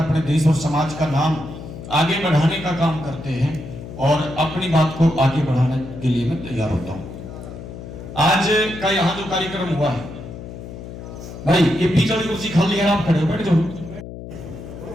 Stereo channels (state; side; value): noise; left; hum, 12 dB below the sound